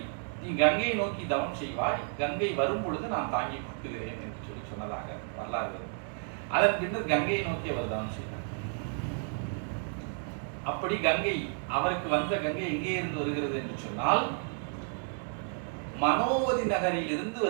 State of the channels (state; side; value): silent; left; 57 dB below the other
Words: நீ கங்கையை நோக்கி தவம் செய்வாய், கங்கை வரும் பொழுது நான் தாங்கி கொடுக்குகிறேன் என்று சொல்லி சொன்னதாக வரலாறு. அதன் பின்னர் கங்கையை நோக்கி அவர் தவம் செய்தார். அப்படி கங்கை அவருக்கு வந்த கங்கை எங்கே இருந்து வருகிறது என்று சொன்னால் மனோவதி நகரில் இருந்து